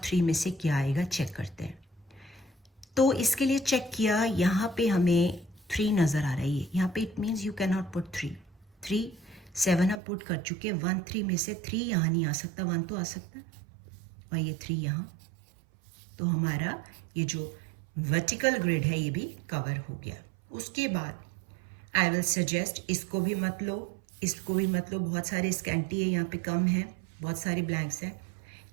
3 में से क्या आएगा चेक करते हैं. तो इसके लिए चेक किया, यहाँ पे हमें 3 नज़र आ रहा है. यहाँ पे it means you can not put 3. 3 7 हम पुट कर चुके हैं. 1 3 में से 3 यहाँ नहीं आ सकता, 1 तो आ सकता है, और ये 3 यहाँ. तो हमारा ये जो वर्टिकल ग्रिड है ये भी कवर हो गया. उसके बाद आई विल सजेस्ट इसको भी मत लो, इसको भी मत लो. बहुत सारे स्कैंटी है, यहाँ पे कम है, बहुत सारे ब्लैंक्स हैं.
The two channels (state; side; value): drops out; left; at 10.0 s